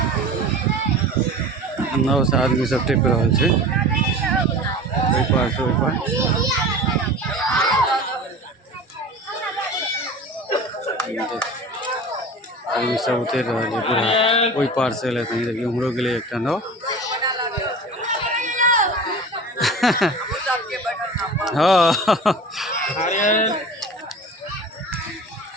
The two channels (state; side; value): normal; both; correlation 0.36